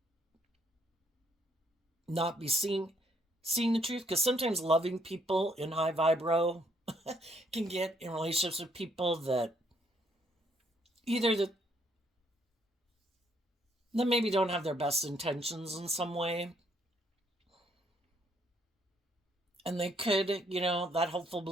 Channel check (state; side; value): normal; both; correlation 0.69